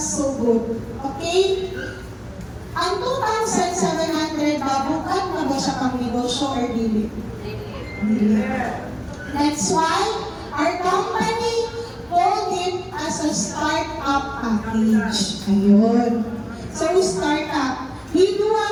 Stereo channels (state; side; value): identical; both; correlation 1.00